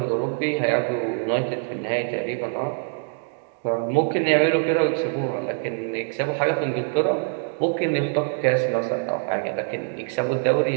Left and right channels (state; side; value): silent; left; 56 dB below the other